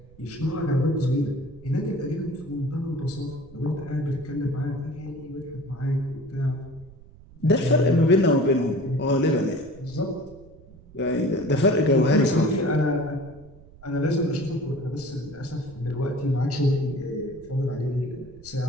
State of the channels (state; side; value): noise; right; rumble, 21 dB below the sound